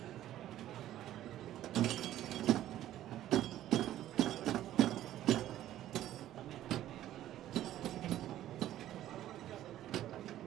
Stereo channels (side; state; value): left; quieter; 13.0 dB